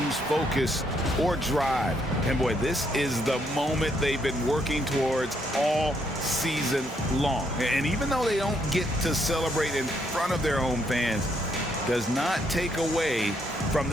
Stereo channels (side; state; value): both; normal; correlation 0.74